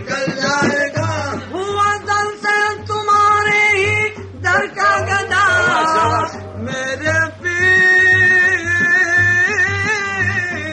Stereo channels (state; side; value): identical; both; correlation 1.00